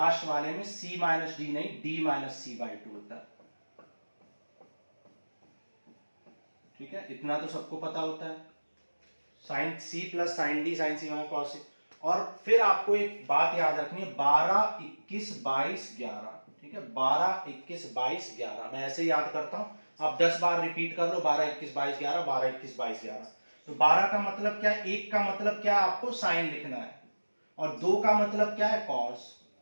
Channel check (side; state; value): both; inverted; correlation -1.00